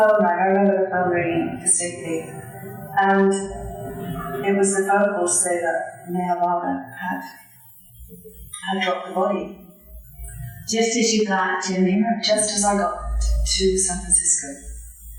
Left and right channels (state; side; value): identical; both; correlation 1.00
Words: rang. I remember the phone ringing distinctly. And it was the phone call to say that MeherBaba had dropped the body. Just as you got to America? Just as I got to San Francisco,